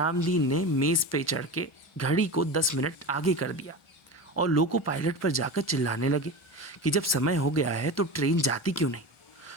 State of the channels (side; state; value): both; normal; correlation 0.26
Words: ने मेज़ पे चढ़ के घड़ी को 10 मिनट आगे कर दिया और लोको पायलट पर जाकर चिल्लाने लगे कि जब समय हो गया है तो ट्रेन जाती क्यों नहीं।